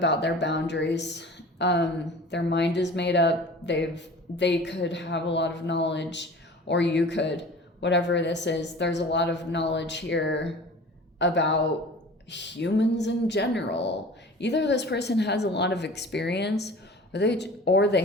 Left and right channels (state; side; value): normal; both; correlation 0.41